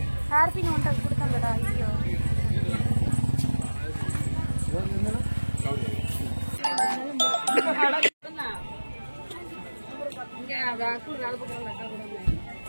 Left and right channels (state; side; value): inverted; both; correlation -1.00